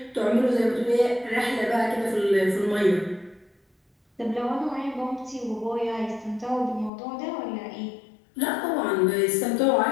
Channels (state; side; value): drops out; right; at 6.9 s